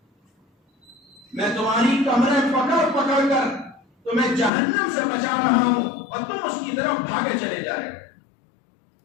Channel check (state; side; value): drops out; right; at 4.5 s